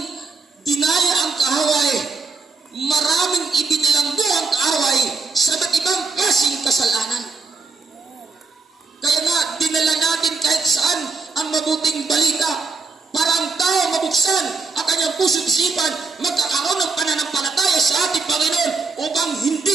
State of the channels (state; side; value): quieter; left; 4.3 dB